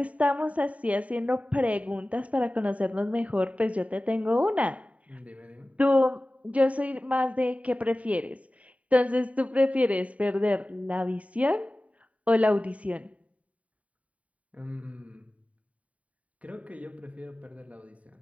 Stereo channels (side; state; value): left; late; 0.067 ms